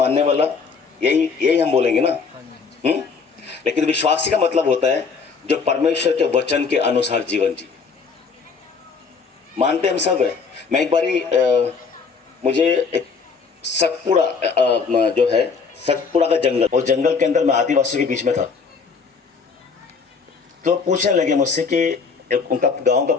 वाला, यही हम बोलेंगे ना। लेकिन विश्वासी का मतलब होता है जो परमेश्वर के वचन के अनुसार जीवन जी। मानते हम सब है। मैं एक बारी मुझे एक सतपुड़ा जो है, सतपुड़ा का जंगल, और जंगल के अंदर मैं आदिवासियों के बीच में था। तो पूछने लगे मुझसे कि उनका गांव का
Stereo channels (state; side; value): quieter; right; 5.2 dB